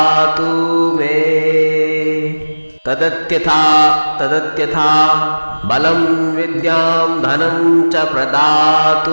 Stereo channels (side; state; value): both; inverted; correlation -1.00